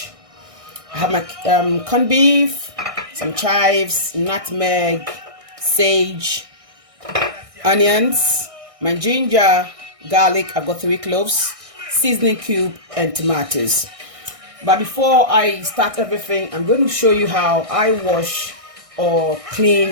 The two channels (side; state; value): left; late; 1.6 ms